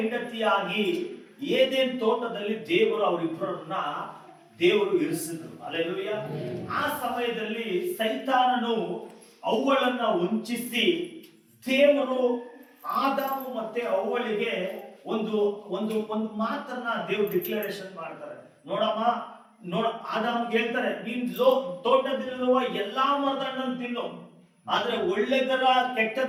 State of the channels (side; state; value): both; identical; correlation 1.00